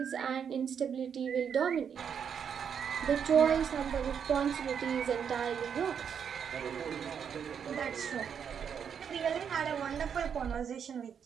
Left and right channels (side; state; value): left; quieter; 7.5 dB